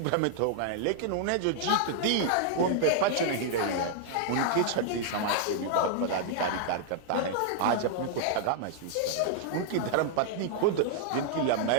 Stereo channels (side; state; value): both; different; correlation -0.01